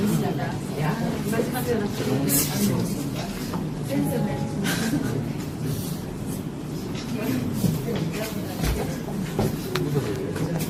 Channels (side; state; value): both; identical; correlation 1.00